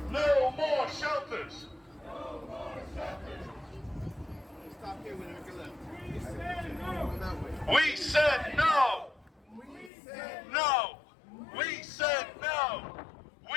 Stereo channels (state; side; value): drops out; right; at 9.9 s